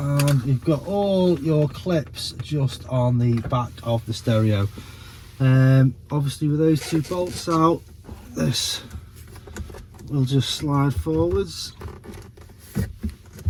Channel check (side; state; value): both; identical; correlation 1.00